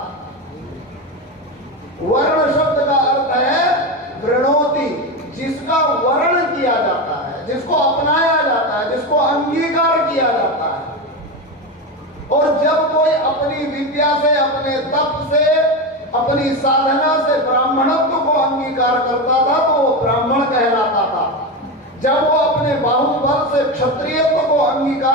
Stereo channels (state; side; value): normal; both; correlation 0.17